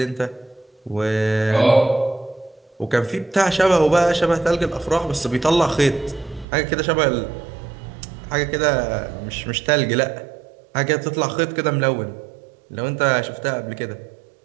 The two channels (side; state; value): left; drops out; at 6.5 s